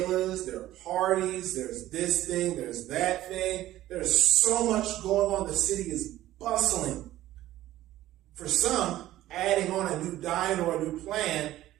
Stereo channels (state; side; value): quieter; left; 14.6 dB